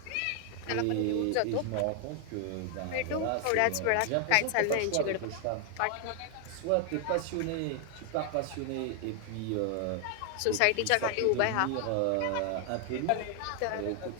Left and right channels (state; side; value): different; both; correlation 0.00